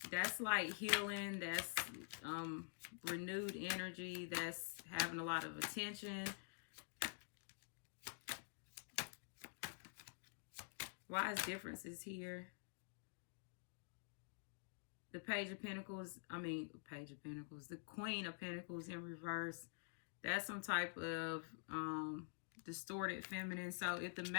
That's like healing. That's renewed energy. That's having a lot of attention. Why is differences here? The Page of Pentacles, the Queen of Pentacles in reverse. That's some type of distorted feminine. So if the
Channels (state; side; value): silent; right; digital silence